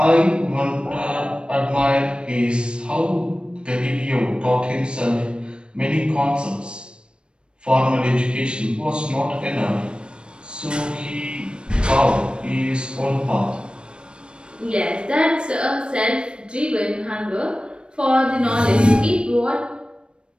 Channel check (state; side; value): late; left; 0.055 ms